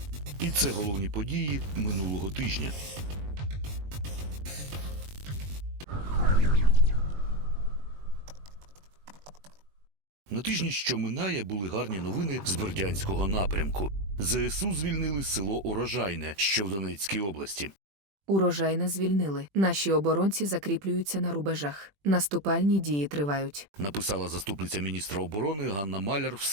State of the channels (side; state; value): left; late; 21 ms